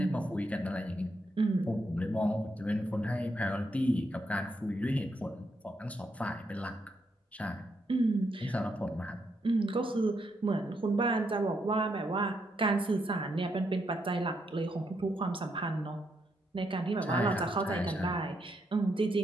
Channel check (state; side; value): normal; both; correlation 0.79